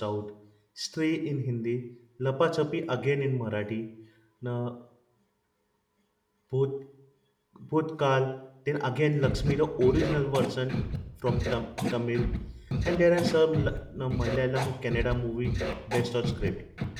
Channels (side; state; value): both; identical; correlation 1.00